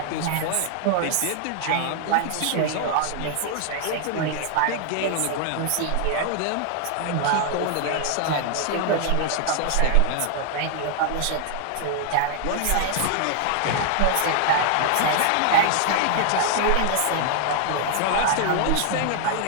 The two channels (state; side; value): different; both; correlation 0.00